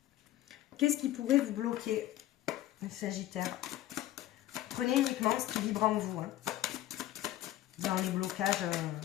qu'est-ce qui pourrait vous bloquer, le Sagittaire? Prenez uniquement ce qui vibre en vous, hein, dans les blocages...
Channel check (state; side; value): quieter; right; 14.1 dB